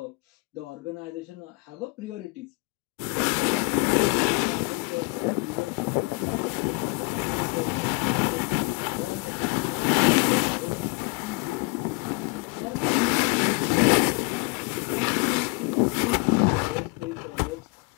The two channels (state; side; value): quieter; right; 30.4 dB